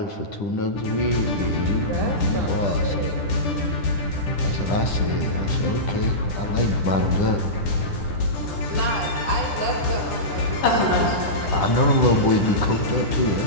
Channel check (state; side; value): late; right; 10 ms